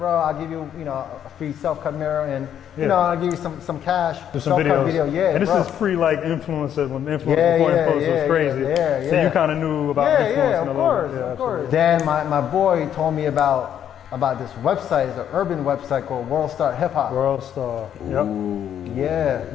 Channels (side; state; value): right; quieter; 9.7 dB